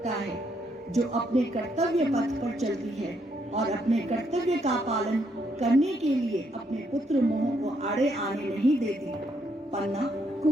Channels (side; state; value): both; normal; correlation 0.74